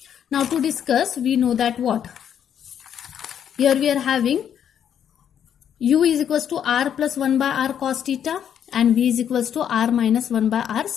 Now to discuss, we know that what? Here we are having u is equals to r plus 1 by r cos theta and v is equals to r minus 1 by r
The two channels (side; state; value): right; quieter; 9.0 dB